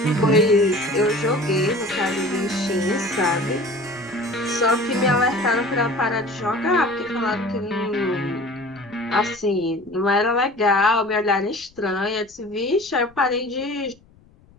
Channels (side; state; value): left; noise; rumble, 28 dB below the sound